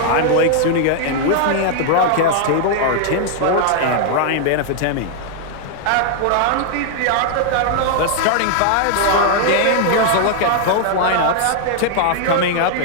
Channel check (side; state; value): both; different; correlation 0.00